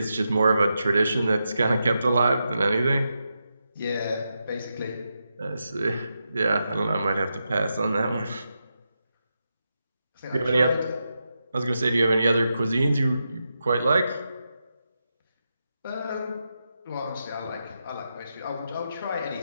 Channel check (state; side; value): inverted; both; correlation -0.87